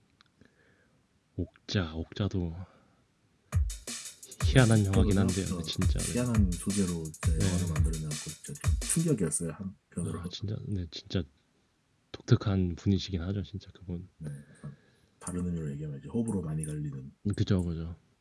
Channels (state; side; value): identical; both; correlation 1.00